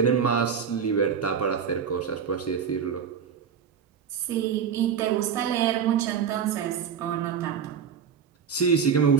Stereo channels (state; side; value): quieter; left; 7.2 dB